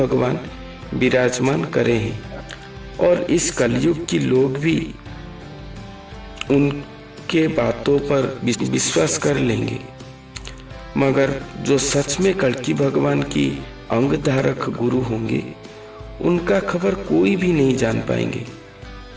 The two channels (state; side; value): identical; both; correlation 1.00